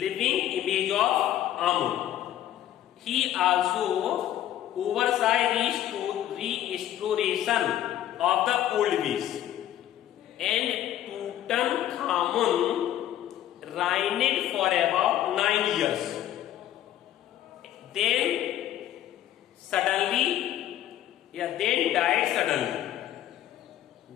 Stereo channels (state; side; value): quieter; right; 12.3 dB